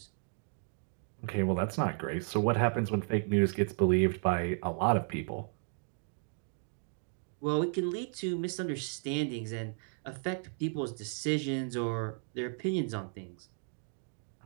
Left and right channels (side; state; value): left; silent; 55 dB below the other